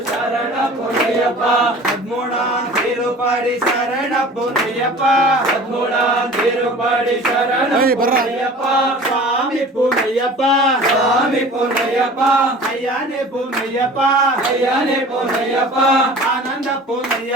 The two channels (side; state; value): both; normal; correlation 0.43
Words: சரண பொன்னையப்பா பத்மூடா திருப்படி சரண பொன்னையப்பா பத்மூடா திருப்படி சரணம் ஏய், ಬರ್ರಾ. பொன்னையப்பா சாமி பொன்னையப்பா சாமி பொன்னையப்பா ஐயானே பொன்னையப்பா ஐயானே பொன்னையப்பா ஆனந்த